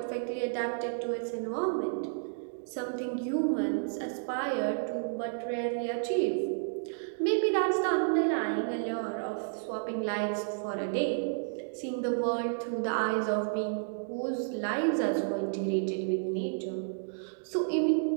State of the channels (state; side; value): silent; left; digital silence